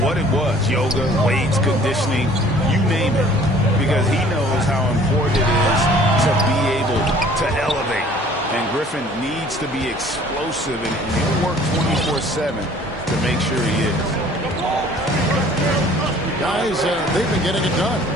what it was, yoga, weights, conditioning, you name it, because he knows how important it is to be able to elevate. And Griffin needs to be explosive, and he'll work 24/7 to make sure he is. Guys, they've been getting it done.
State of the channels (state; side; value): normal; both; correlation 0.53